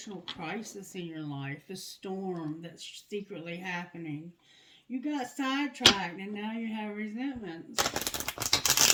crisis in your life, the storm that's secretly happening. You got sidetracked and now you have resentments.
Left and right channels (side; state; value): both; identical; correlation 1.00